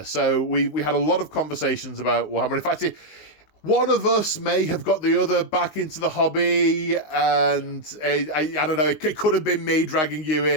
so we had a lot of conversations about Warhammer. In fact, one of us may have got the other back into the hobby, and I don't know, it could have been me dragging you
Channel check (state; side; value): late; right; 19 ms